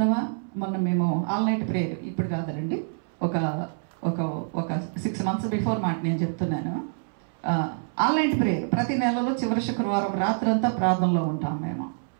మొన్న మేము ఆల్-నైట్ ప్రేయర్, ఇప్పుడు కాదండి, ఒక 6 months బిఫోర్ మాట నేను చెప్తున్నాను. ఆల్-నైట్ ప్రేయర్ ప్రతి నెలలో చివరి శుక్రవారం రాత్రంతా ప్రార్థనలో ఉంటాం మేము.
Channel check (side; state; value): left; silent; 61 dB below the other